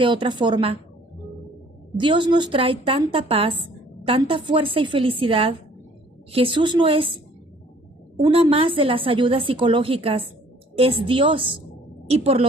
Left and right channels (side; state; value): both; normal; correlation 0.57